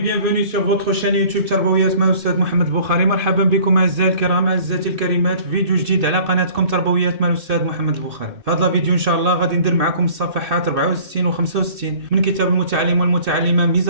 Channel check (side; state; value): left; late; 2.6 ms